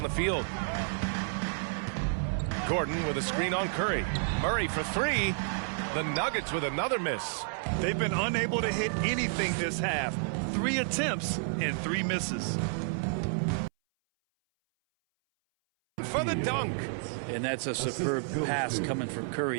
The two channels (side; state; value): left; silent; 57 dB below the other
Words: the field. Gordon with a screen on Curry. Murray for three. The Nuggets with another miss. They've been unable to hit anything this half. 3 attempts and 3 misses. For the dunk. And that's a superb pass coming from